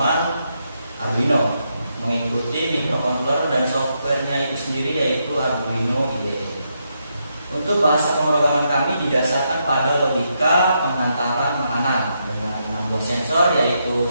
Arduino, mengikuti microcontroller dan softwarenya itu sendiri yaitu Arduino IDE. Untuk bahasa pemrograman kami didasarkan pada logika penghantaran makanan dengan 6 buah sensor, yaitu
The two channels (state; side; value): inverted; both; correlation -0.80